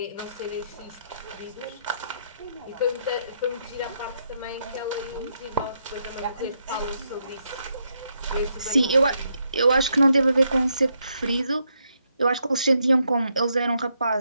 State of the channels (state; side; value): inverted; both; correlation -0.78